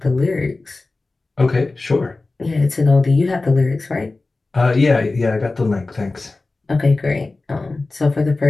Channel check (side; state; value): right; quieter; 3.4 dB